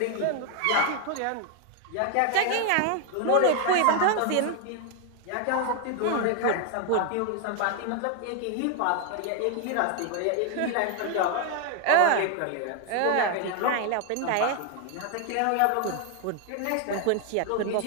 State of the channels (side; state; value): both; different; correlation 0.00